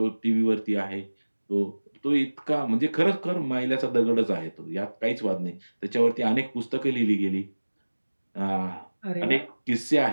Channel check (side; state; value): both; inverted; correlation -1.00